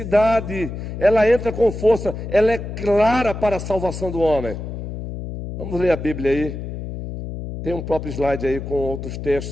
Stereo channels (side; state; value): left; noise; hum, 7 dB below the sound